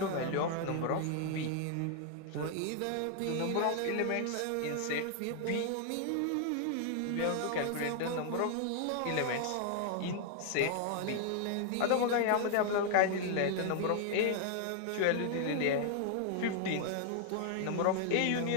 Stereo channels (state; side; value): different; both; correlation 0.00